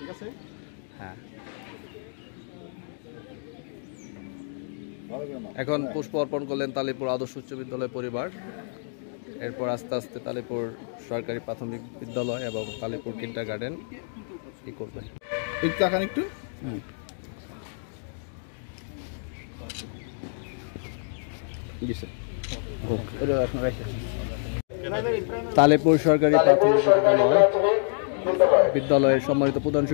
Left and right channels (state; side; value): silent; right; digital silence